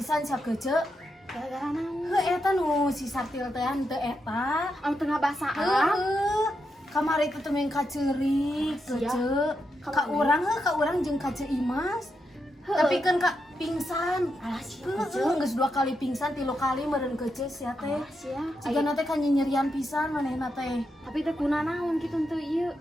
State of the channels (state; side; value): normal; both; correlation 0.84